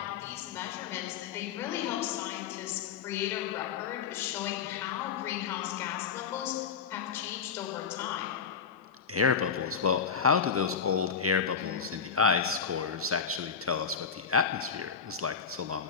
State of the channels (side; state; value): right; quieter; 6.5 dB